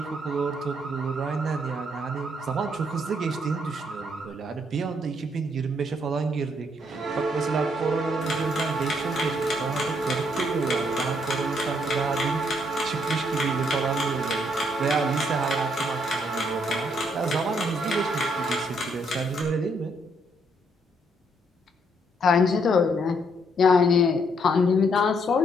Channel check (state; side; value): normal; both; correlation 0.71